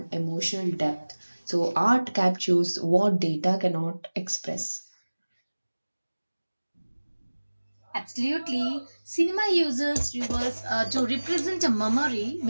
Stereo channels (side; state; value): both; inverted; correlation -1.00